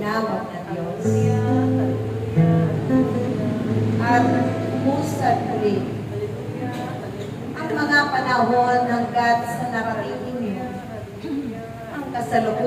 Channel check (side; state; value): both; identical; correlation 1.00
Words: ng Diyos. At umusad ulit ang mga panahon hanggat sa narating ninyo ang